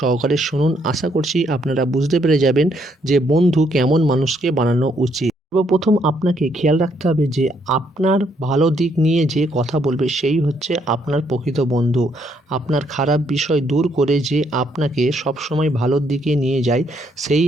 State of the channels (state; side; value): normal; both; correlation 0.72